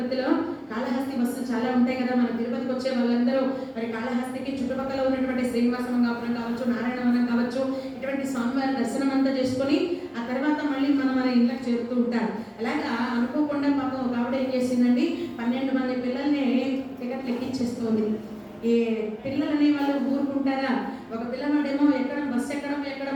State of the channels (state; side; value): identical; both; correlation 1.00